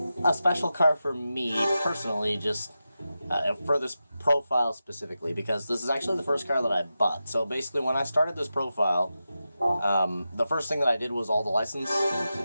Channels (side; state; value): both; inverted; correlation -0.91